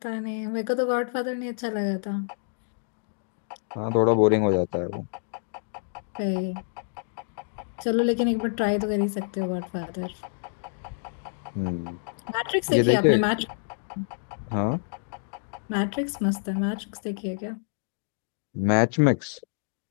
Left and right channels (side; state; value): right; silent; digital silence